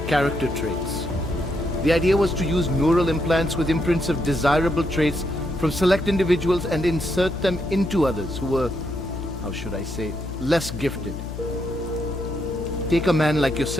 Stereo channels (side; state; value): left; noise; hum, 8 dB below the sound